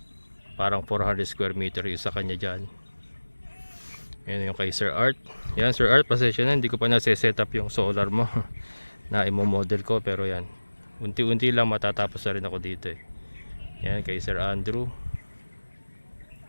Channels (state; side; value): inverted; both; correlation -1.00